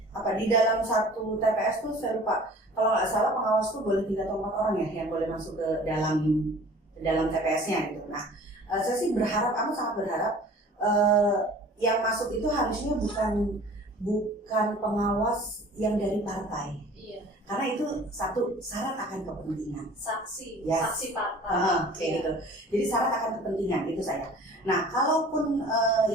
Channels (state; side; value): normal; both; correlation 0.46